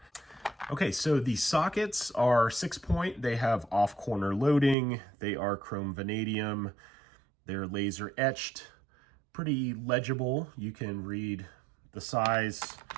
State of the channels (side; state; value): left; drops out; at 4.8 s